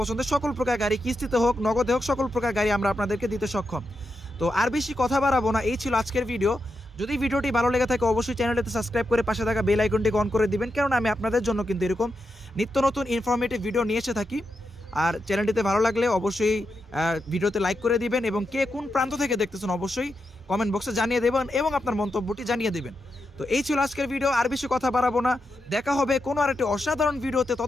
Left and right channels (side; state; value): both; normal; correlation 0.86